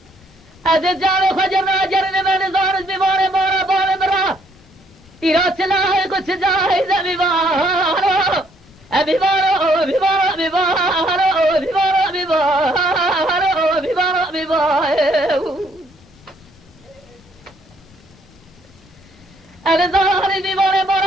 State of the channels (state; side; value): normal; both; correlation 0.67